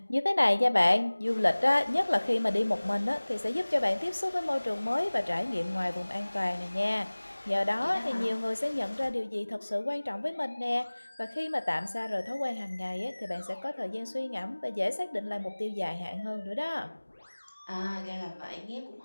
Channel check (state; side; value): inverted; both; correlation -1.00